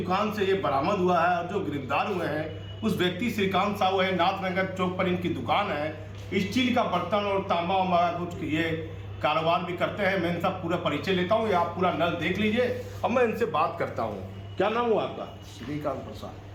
से ये बरामद हुआ है और जो गिरफ्तार हुए हैं उस व्यक्ति श्रीकांत साहू है। नाथनगर चौक पर इनकी दुकान है। स्टील का बर्तन और तांबा वांबा कुछ ये कारोबार भी करते हैं। मैं इनका पूरा परिचय लेता हूँ, ये आप पूरा नल देख लीजिए अब मैं इनसे बात करता हूँ। क्या नाम हुआ आपका? श्रीकांत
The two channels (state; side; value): identical; both; correlation 1.00